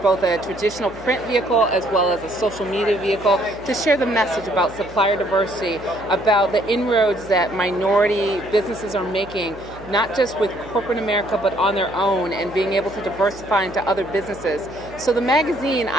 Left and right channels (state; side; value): noise; right; hum, 18 dB below the sound